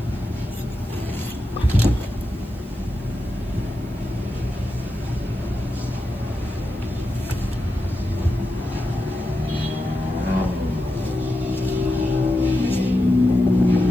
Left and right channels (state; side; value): noise; right; hiss, 27 dB below the sound